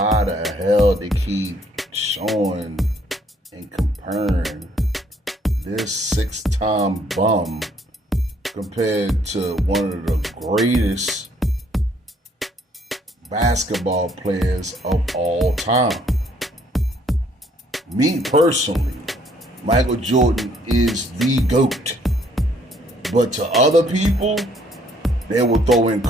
the hell they keep showing and comparing this six-time bum compared to one of the greatest basketball players of all time. Me personally, Michael Jordan is the GOAT. But to other people, they will throw in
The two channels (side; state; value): both; normal; correlation 0.65